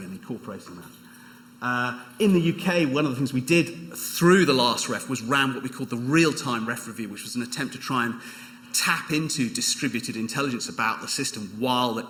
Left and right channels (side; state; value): both; identical; correlation 1.00